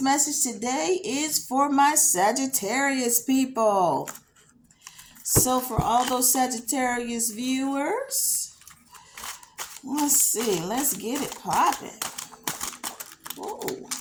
today is for my Sagittarius people. So for all those Sagittarius viewers, let's see. Let's get it popping. Whoa.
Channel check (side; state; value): both; identical; correlation 1.00